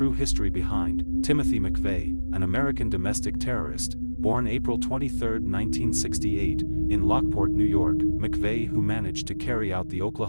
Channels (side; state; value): both; inverted; correlation -1.00